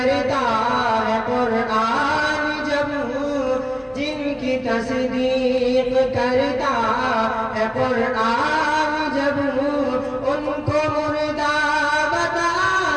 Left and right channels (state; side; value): identical; both; correlation 1.00